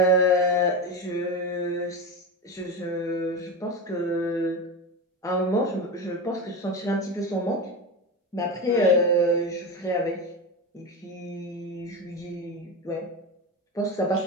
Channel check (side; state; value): both; normal; correlation 0.20